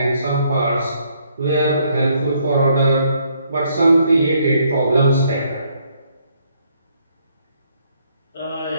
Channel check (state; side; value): inverted; both; correlation -0.70